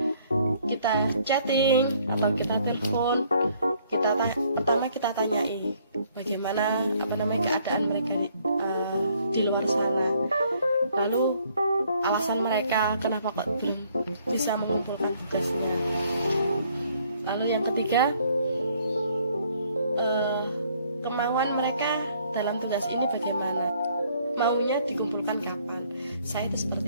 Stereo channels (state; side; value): inverted; both; correlation -0.64